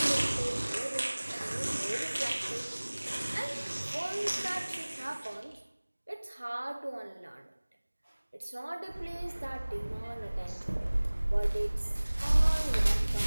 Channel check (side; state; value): both; inverted; correlation -1.00